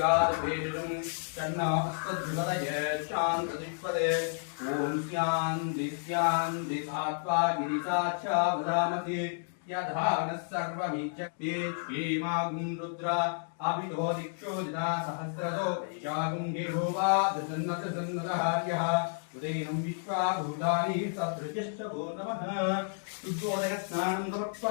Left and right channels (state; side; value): silent; right; digital silence